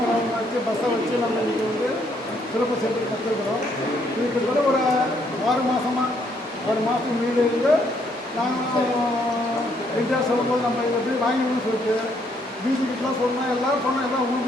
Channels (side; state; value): both; normal; correlation 0.70